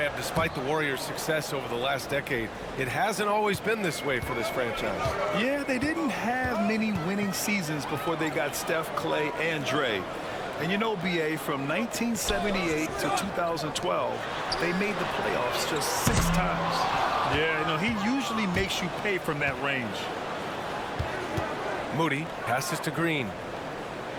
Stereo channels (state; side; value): identical; both; correlation 1.00